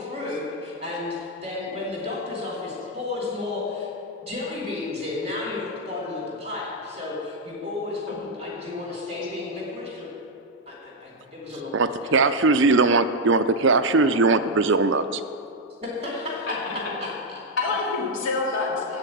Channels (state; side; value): normal; both; correlation 0.01